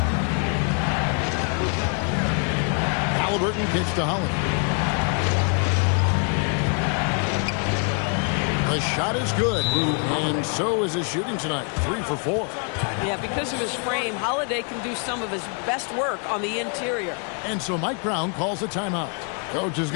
Halliburton kicks to Holly. The shot is good, and so is his shooting tonight. 3 for 4. Yeah, because of his frame, Holiday can do some of his best work on the interior. And so Mike Brown calls a timeout. Coach is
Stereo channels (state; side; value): quieter; right; 39.9 dB